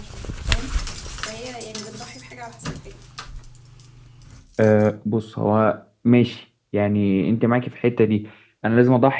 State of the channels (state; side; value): identical; both; correlation 1.00